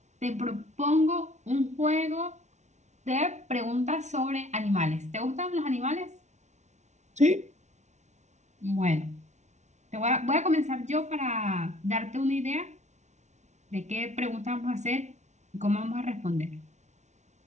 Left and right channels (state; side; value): late; left; 0.33 ms